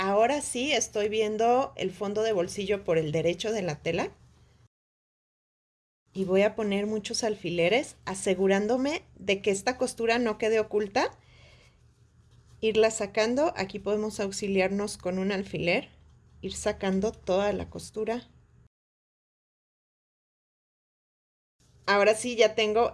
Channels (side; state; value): both; identical; correlation 1.00